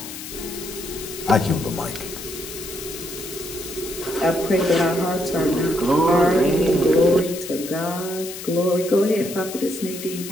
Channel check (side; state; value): left; noise; hiss, 11 dB below the sound